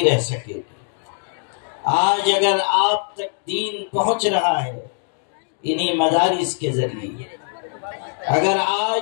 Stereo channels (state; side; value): silent; right; 57 dB below the other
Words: رہ سکے گی۔ آج اگر آپ تک دین پہنچ رہا ہے انہی مدارس کے ذریعے، اگر